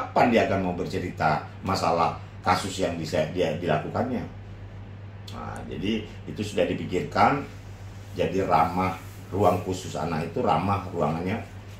dia akan mau bercerita masalah kasus yang bisa dia dilakukannya? Nah, jadi itu sudah dipikirkan. Jadi ramah ruang khusus anak itu ramah ruangannya,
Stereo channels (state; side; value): identical; both; correlation 1.00